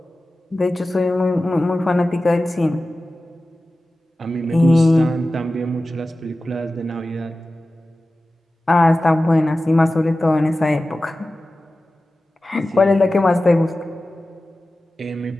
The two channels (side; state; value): both; normal; correlation 0.95